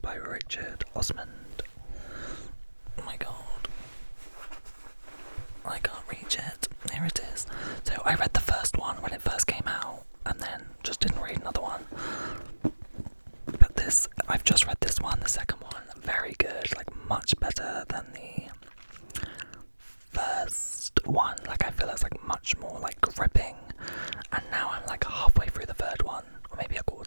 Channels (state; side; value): inverted; both; correlation -1.00